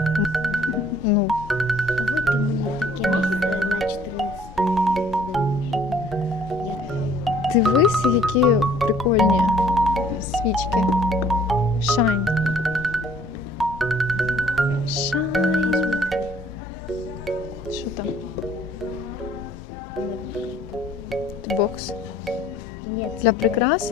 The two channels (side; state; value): both; normal; correlation 0.57